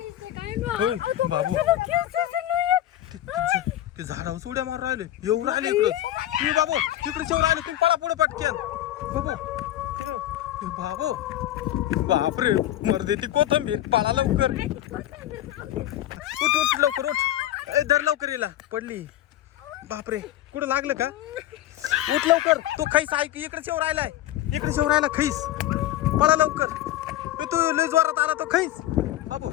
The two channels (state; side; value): quieter; right; 13.5 dB